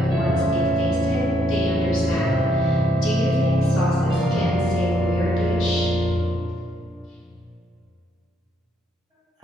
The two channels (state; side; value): normal; both; correlation 0.73